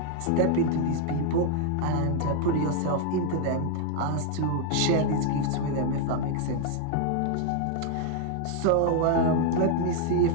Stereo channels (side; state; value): both; different; correlation 0.00